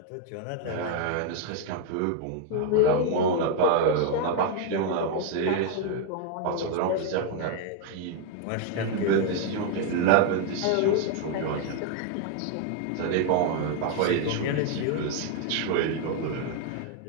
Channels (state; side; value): different; both; correlation 0.00